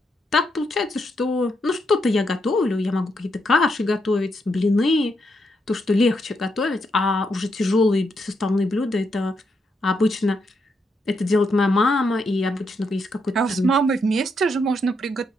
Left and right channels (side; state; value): both; normal; correlation 0.80